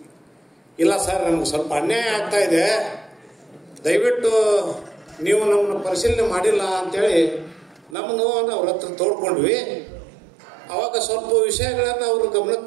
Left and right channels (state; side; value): drops out; left; at 8.0 s